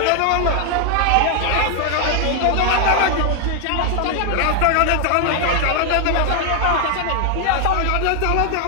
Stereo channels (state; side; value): different; both; correlation 0.00